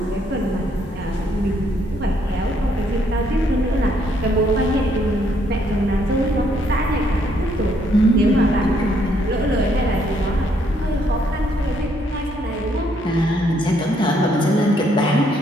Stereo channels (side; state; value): both; normal; correlation 0.70